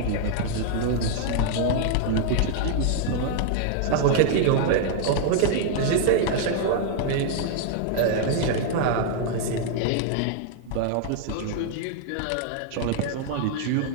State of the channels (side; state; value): both; different; correlation -0.01